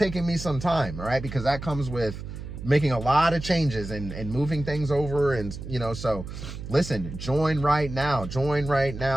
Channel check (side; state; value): right; noise; hum, 10 dB below the sound